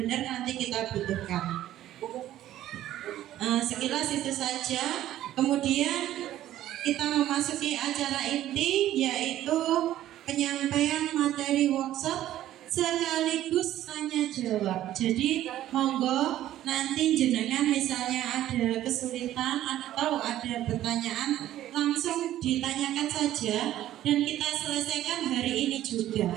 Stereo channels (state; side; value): quieter; left; 13.1 dB